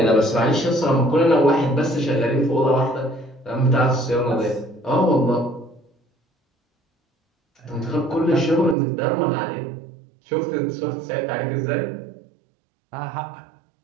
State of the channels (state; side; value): drops out; left; at 8.8 s